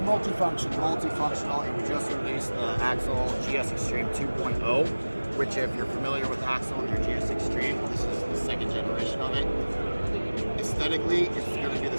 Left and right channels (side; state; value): both; inverted; correlation -1.00